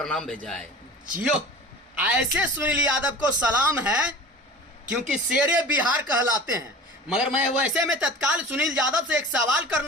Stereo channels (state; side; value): normal; both; correlation 0.38